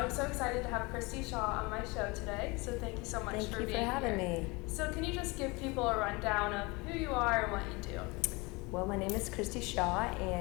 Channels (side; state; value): right; quieter; 25.9 dB